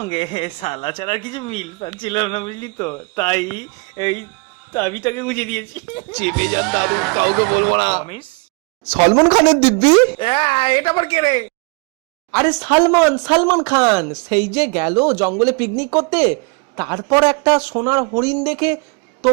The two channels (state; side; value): quieter; left; 31.0 dB